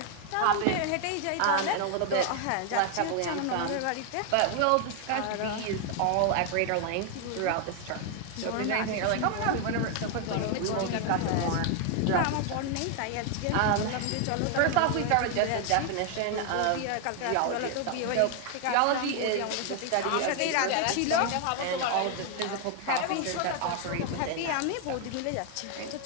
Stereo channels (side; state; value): both; different; correlation 0.00